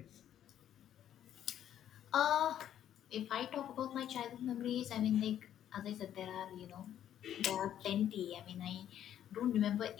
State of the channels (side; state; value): right; quieter; 10.7 dB